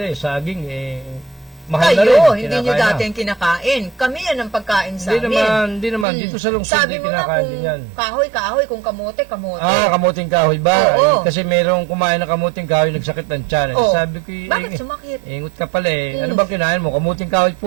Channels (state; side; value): drops out; left; at 6.1 s